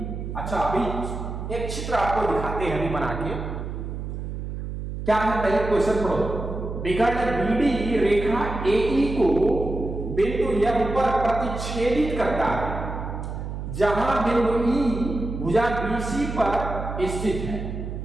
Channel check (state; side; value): noise; right; hum, 6 dB below the sound